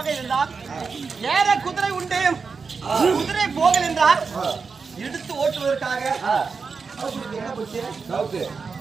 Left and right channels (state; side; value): quieter; left; 5.0 dB